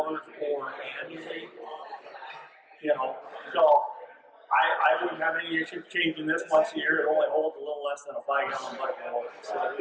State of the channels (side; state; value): both; identical; correlation 1.00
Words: or annually. You know, so I wouldn't have any issue changing this once a year. It only holds a little less than a 5-gallon bucket of oil, so